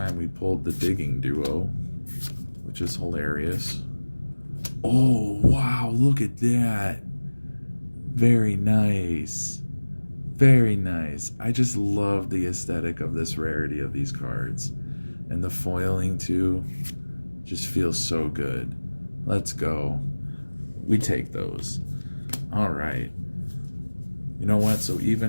we pulled the digging duo, which is hilarious. Oh, wow, look at that. Very nice. Very nice. I just love the aesthetic of this rarity of these cards. And the foiling, too, just feels so good. Let's go. We take those. All right. You know what? So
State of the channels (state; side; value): inverted; both; correlation -1.00